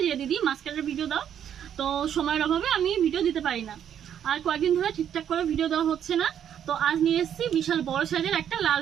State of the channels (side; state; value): left; quieter; 9.4 dB